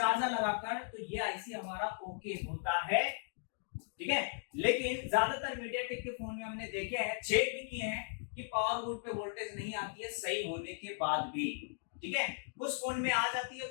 लगाकर तो ये आईसी हमारा ओके होता है, ठीक है। लेकिन ज्यादातर मीडियाटेक के फोन में हमने देखे हैं, चेक भी किए हैं कि पावर गुड पे वोल्टेज नहीं आती है सही होने के बाद भी, ठीक है। कुछ फोन में आ जाती है,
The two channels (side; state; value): right; silent; digital silence